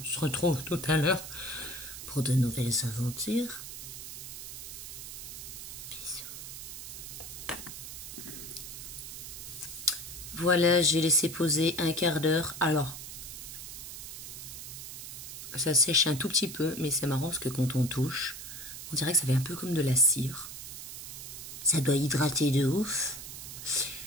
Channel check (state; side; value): noise; right; hiss, 10 dB below the sound